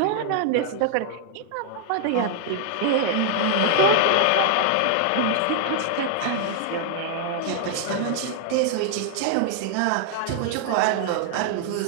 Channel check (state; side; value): different; both; correlation 0.00